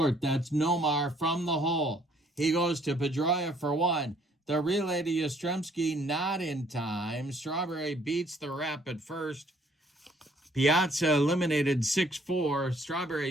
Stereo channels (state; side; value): normal; both; correlation 0.62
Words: That's Nomar from the hole. He goes to Pedroia for 1. The relay to Yastrzemski not in time. Strawberry beats the rep at first. Piazza eliminated 6-4.